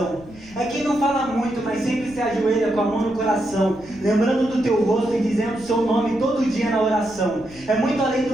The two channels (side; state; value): left; noise; rumble, 21 dB below the sound